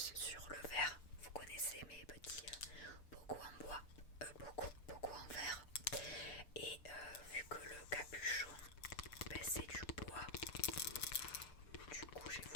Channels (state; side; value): late; right; 6.8 ms